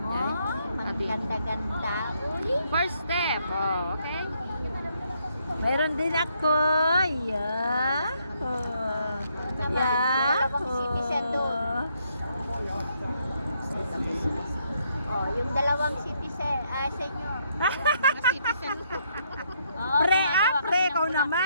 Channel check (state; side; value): inverted; both; correlation -0.73